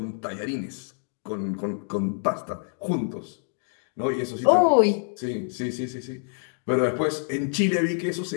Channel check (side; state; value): right; silent; 60 dB below the other